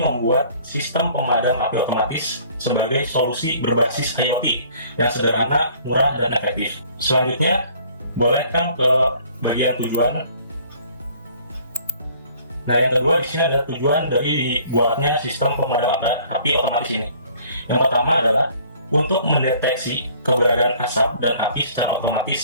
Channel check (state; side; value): inverted; both; correlation -0.55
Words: membuat sistem pemadam api otomatis sebagai solusi berbasis IoT yang sederhana, murah, dan efektif. Selanjutnya, boleh kan ke bagian tujuan. Nah, yang kedua di sini ada tujuan dari dibuatnya sistem pemadam api otomatis ini. Yang pertama adalah untuk mendeteksi keberadaan asap dan api secara